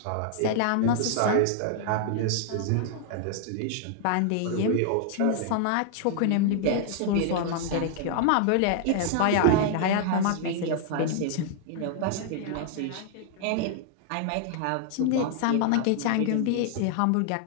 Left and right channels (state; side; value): different; both; correlation 0.00